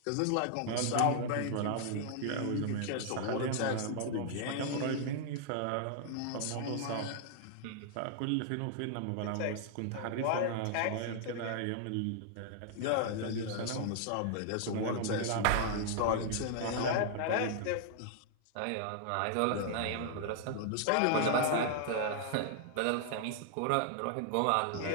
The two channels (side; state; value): both; different; correlation -0.01